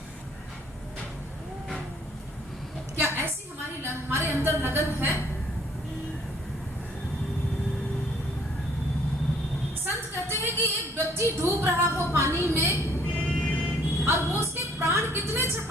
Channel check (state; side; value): normal; both; correlation 0.61